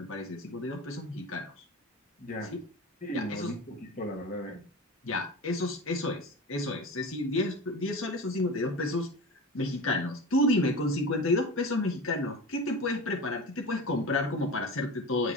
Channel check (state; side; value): normal; both; correlation 0.30